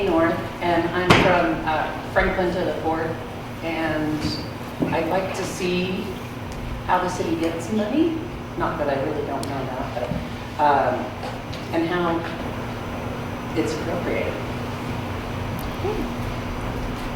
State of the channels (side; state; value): both; identical; correlation 1.00